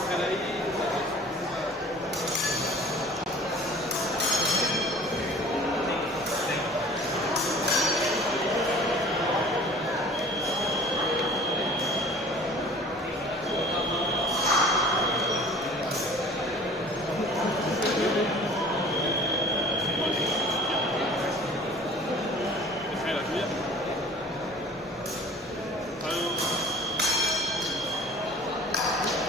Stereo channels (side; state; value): both; normal; correlation 0.46